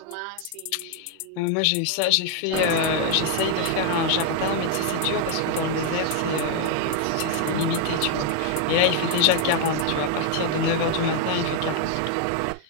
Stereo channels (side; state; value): both; different; correlation 0.00